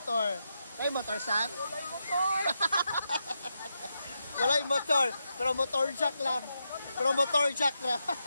Kay motor, San? Walay motor. Wala yung motor, pero motor jack lang. Pero motor jack lang.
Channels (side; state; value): both; inverted; correlation -0.85